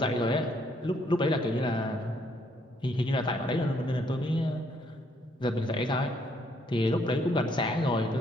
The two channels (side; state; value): both; normal; correlation 0.69